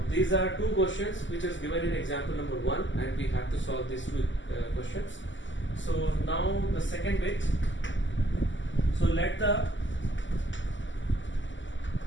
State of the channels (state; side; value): late; right; 0.54 ms